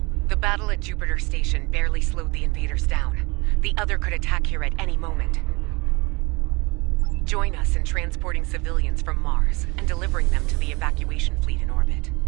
The battle at Jupiter Station barely slowed the invaders down. The other could attack here at any moment. Join us in transporting civilians from Mars and delivering them to the evacuation fleet in orbit.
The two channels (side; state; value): left; quieter; 26.1 dB